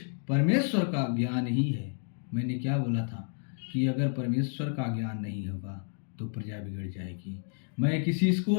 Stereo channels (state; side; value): silent; right; 57 dB below the other